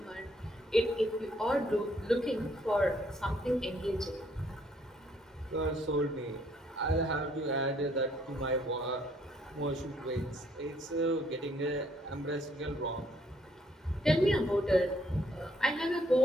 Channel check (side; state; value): both; normal; correlation 0.67